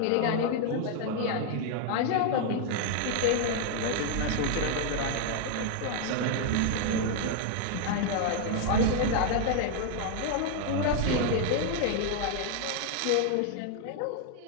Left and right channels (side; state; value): both; different; correlation 0.00